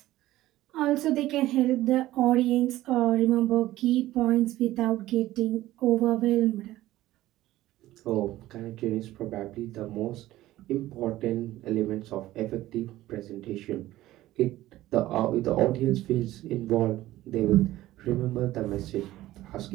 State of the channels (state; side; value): quieter; left; 15.6 dB